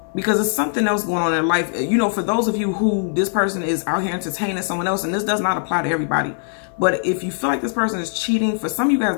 because it's something else going on in their life. You know, for those of you who this person is out here entertaining someone else, and this does not apply to everybody, but if you feel like this person is cheating, for some of you guys,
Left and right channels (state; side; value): silent; right; 65 dB below the other